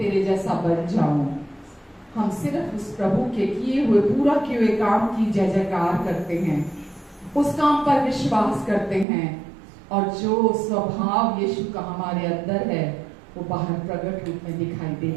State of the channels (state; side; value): drops out; left; at 9.1 s